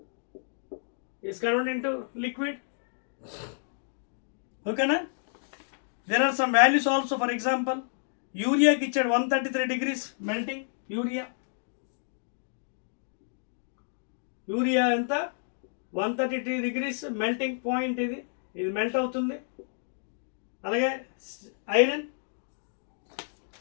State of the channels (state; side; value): silent; right; digital silence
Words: is converted into liquid. ఓకేనా? There are some values also. For example యూరియాకి ఇచ్చాడు 133 degrees మెల్టింగ్. యూరియా ఎంత, 133 degrees melting point. ఇది melt అవుతుంది. అలాగే iron